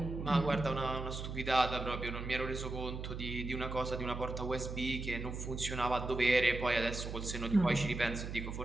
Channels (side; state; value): right; noise; hum, 6 dB below the sound